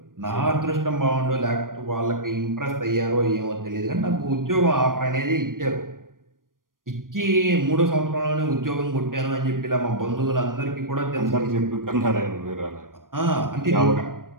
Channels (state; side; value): late; left; 0.90 ms